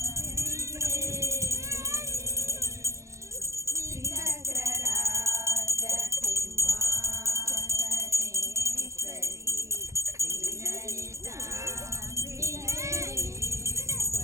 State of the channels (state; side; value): late; left; 0.14 ms